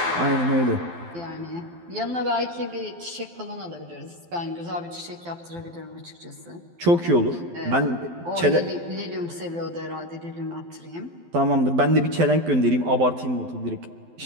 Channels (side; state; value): left; late; 12 ms